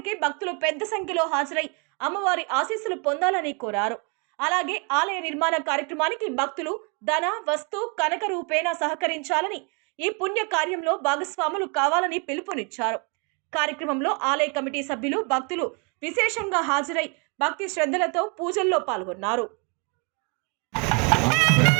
భక్తులు పెద్ద సంఖ్యలో హాజరై అమ్మవారి ఆశీస్సులు పొందాలని కోరారు. అలాగే ఆలయ నిర్మాణ కార్యక్రమానికి భక్తులు ధన, వస్తు, కనక రూపేణ సహకరించాలని, ఈ పుణ్య కార్యంలో భాగస్వాములు కావాలని పిలుపునిచ్చారు. కార్యక్రమంలో ఆలయ కమిటీ సభ్యులు, భక్తులు విశేషంగా హాజరై భక్తి శ్రద్ధలతో పూజల్లో పాల్గొన్నారు.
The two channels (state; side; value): quieter; left; 34.0 dB